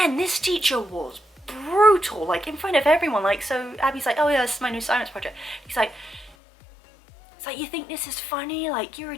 this teacher was brutal, like in front of everyone. Like, so Abby's like, oh yeah, this is my new science project. He's like, it's like, you think this is funny? Like, you're a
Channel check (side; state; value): right; drops out; at 6.4 s